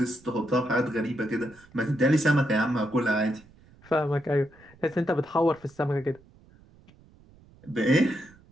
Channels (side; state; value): right; noise; rumble, 27 dB below the sound